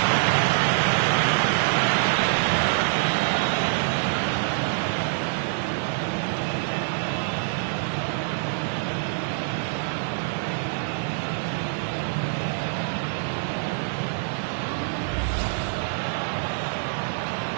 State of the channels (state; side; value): silent; left; digital silence